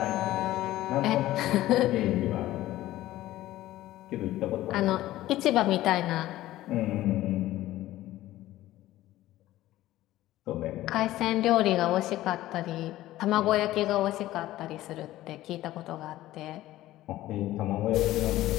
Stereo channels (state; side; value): quieter; right; 15.4 dB